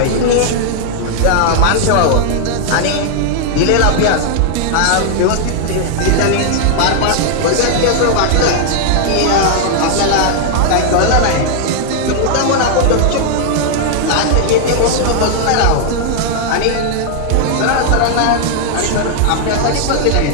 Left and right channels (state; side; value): different; both; correlation 0.00